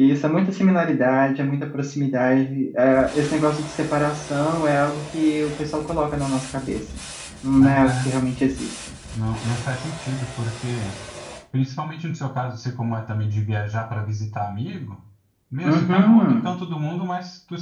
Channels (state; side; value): identical; both; correlation 1.00